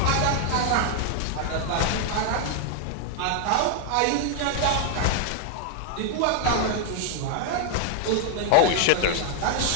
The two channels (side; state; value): both; different; correlation 0.00